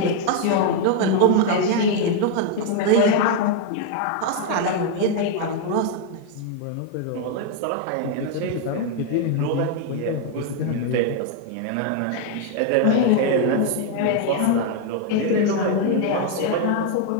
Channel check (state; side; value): different; both; correlation 0.00